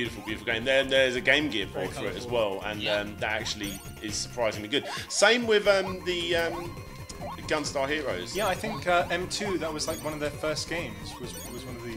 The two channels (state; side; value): identical; both; correlation 1.00